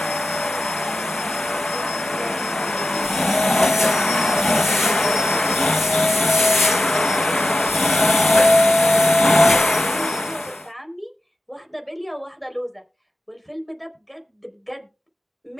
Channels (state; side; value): normal; both; correlation 0.92